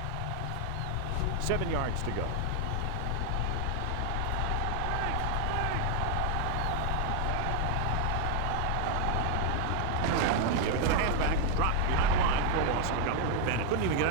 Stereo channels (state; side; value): different; both; correlation 0.00